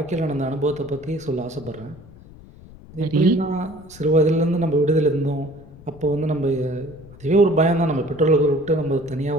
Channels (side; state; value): left; noise; rumble, 20 dB below the sound